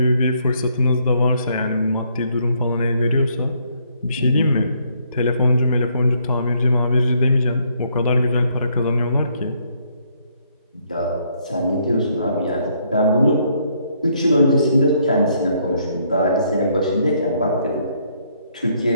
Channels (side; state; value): both; inverted; correlation -0.70